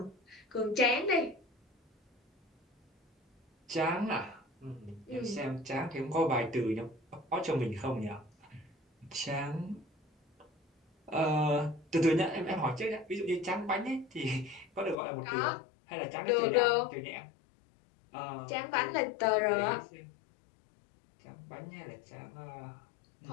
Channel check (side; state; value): right; drops out; at 15.0 s